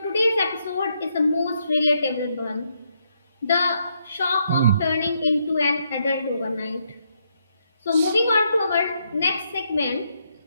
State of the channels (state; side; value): inverted; both; correlation -0.77